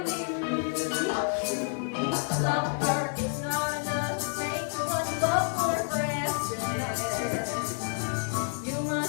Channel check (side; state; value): right; silent; 58 dB below the other